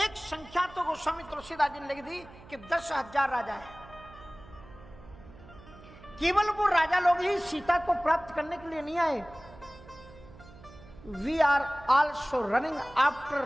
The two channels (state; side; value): noise; right; hum, 20 dB below the sound